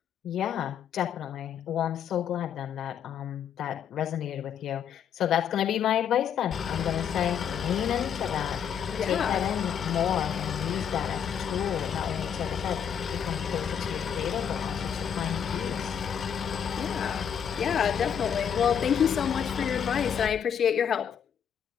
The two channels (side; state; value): right; quieter; 8.1 dB